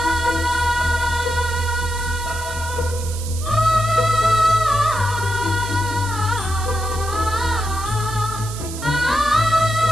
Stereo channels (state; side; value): noise; right; hiss, 11 dB below the sound